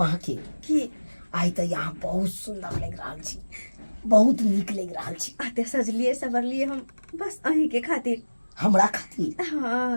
के की आई तो यहाँ बहुत सुंदर लग रहा छी, बहुत नीक लग रहा छी। आते सजलिए सवरलिए हम बस अही के खातिर। हमरा खातिर?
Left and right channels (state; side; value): inverted; both; correlation -1.00